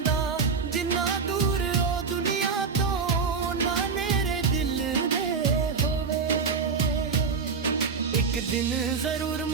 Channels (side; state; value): left; quieter; 5.2 dB